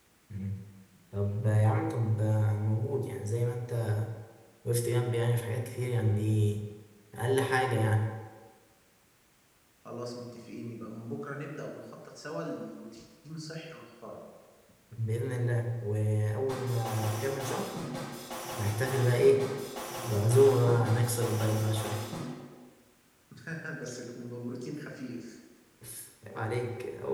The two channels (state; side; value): identical; both; correlation 1.00